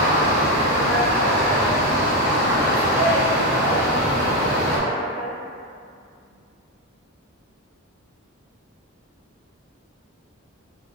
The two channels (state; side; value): normal; both; correlation 0.08